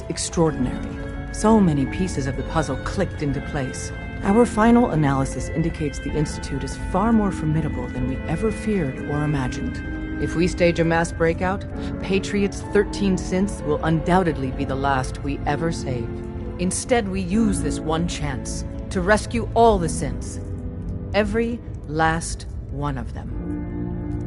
extraordinary. So many pieces of the puzzle clicked into place. Our final analysis indicates the Institute is far more formidable than we ever feared or imagined. If we stage a mass breakout, Patriot's 13 synths will undoubtedly be the last we ever save. Instead, we use this one chance to rescue all the synths. Every last one of them.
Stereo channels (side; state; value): both; identical; correlation 1.00